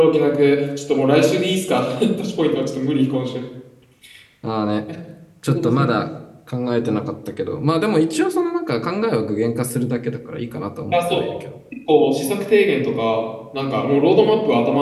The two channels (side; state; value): both; identical; correlation 1.00